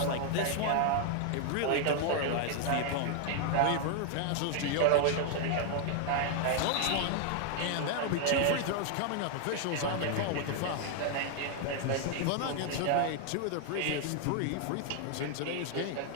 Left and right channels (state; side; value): different; both; correlation 0.00